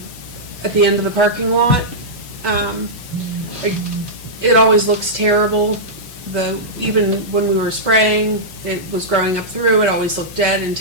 end of the parking lot. It always looks terrible. Even when we were spraying, it was growing up through. It always looked dead and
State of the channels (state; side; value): noise; left; hiss, 18 dB below the sound